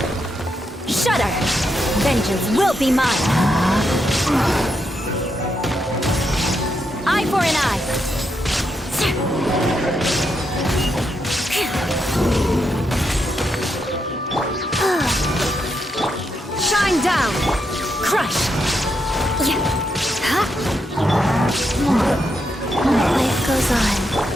Shudder! Vengeance will be mine! Eye for an eye! Shine down! Crush! Life goes on.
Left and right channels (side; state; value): both; normal; correlation 0.81